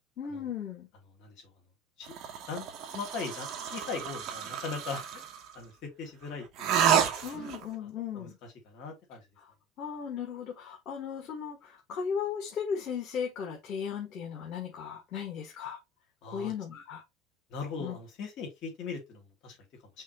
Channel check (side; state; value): both; normal; correlation 0.33